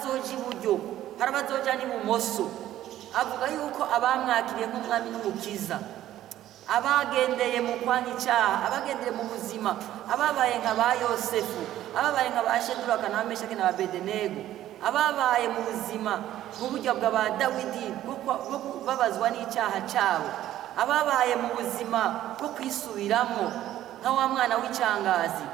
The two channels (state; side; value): quieter; left; 13.0 dB